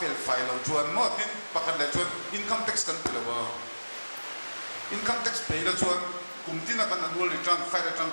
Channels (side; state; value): both; inverted; correlation -1.00